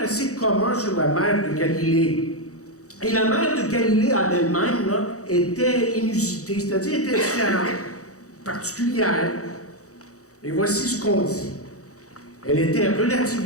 assez communs sur la mer de Galilée. Et la mer de Galilée en elle-même là, était inusitée, c'est-à-dire était différente, particulière. Et voici ce qu'on dit. Elle était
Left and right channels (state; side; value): late; right; 0.65 ms